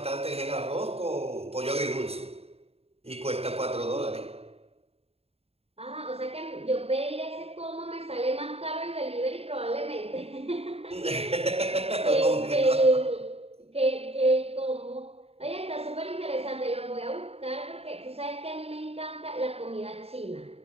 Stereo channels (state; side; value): late; left; 0.29 ms